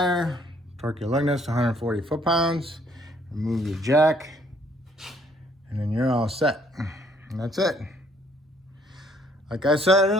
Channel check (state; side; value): normal; both; correlation 0.64